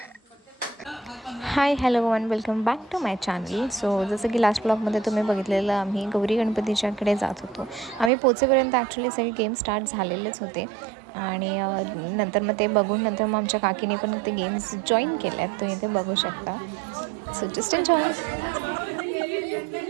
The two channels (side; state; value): left; drops out; at 8.1 s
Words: Hi hello one welcome back to my channel. So जसं की लास्ट ब्लॉगमध्ये तुम्ही बघितलेलं आम्ही गौरी गणपतीच्याकडे जात होतो. आम्ही पोचेपर्यंत ॲक्च्युली सगळे गेम स्टार्ट झालेलेच होते आणि नंतर मग ते बघून नंतर मग आमच्या काकीने पण ते गेम्स जॉईन केले आहेत. तुम्ही ते बघू शकता. So just enjoy.